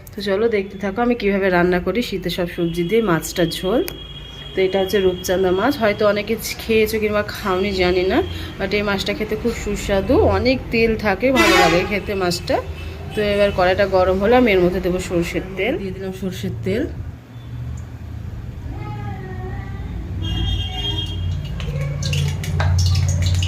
তো চলো দেখতে থাকো আমি কিভাবে রান্না করি শীতের সব সবজি দিয়ে মাছটার ঝোল। তো এটা হচ্ছে রূপচাঁদা মাছ, হয়তো অনেকে খেয়েছো কিংবা খাওনি জানি না, বাট এই মাছটা খেতে খুব সুস্বাদু, অনেক তেল থাকে, ভালো লাগে খেতে মাছটা। তো এবার কড়াইটা গরম হলে আমি এর মধ্যে দেবো সরষের তেল। দিয়ে দিলাম সরষের তেল।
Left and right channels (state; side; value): identical; both; correlation 1.00